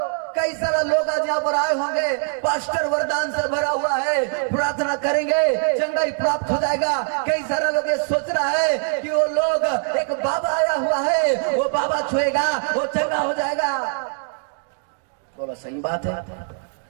कई कई सारे लोग आज यहाँ पर आए होंगे, पास्टर वरदान से भरा हुआ है, प्रार्थना करेंगे चंगाई प्राप्त हो जाएगा। कई सारे लोग ये सोच रहा है कि वो लोग एक बाबा आया हुआ है, वो बाबा छुएगा वो चंगा हो जाएगा। बोला सही बात है।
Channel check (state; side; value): silent; left; digital silence